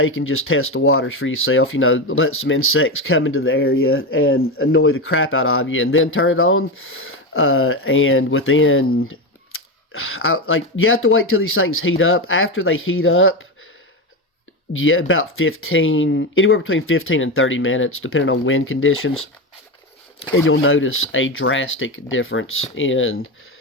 and just test the waters for yourself, let some insects come into the area and annoy the crap out of you and then turn it on. And within, you have to wait till these things heat up. After they heat up, about anywhere between 15 and 30 minutes, depending on wind conditions. And you'll notice a drastic difference in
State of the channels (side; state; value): both; normal; correlation 0.16